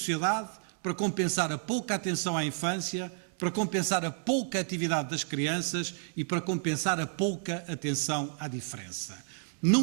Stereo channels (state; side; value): silent; left; 57 dB below the other